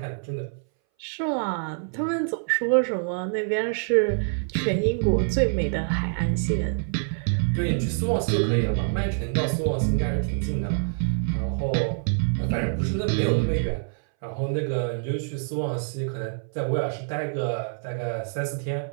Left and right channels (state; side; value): silent; left; 61 dB below the other